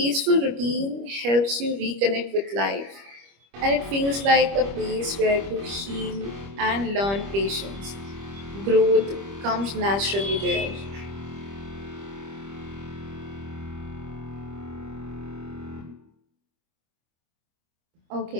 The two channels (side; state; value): left; late; 25 ms